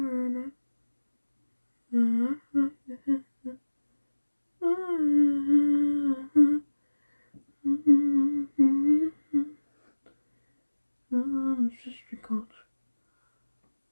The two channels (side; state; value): both; inverted; correlation -1.00